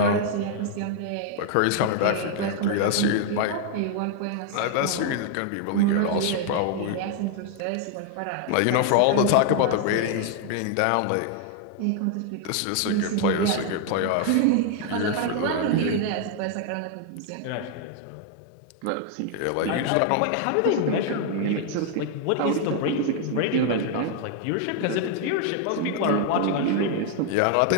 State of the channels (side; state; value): both; different; correlation 0.00